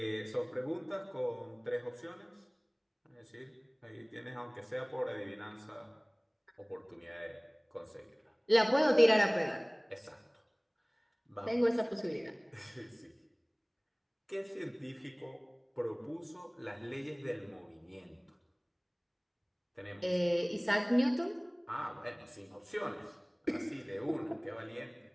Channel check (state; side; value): identical; both; correlation 1.00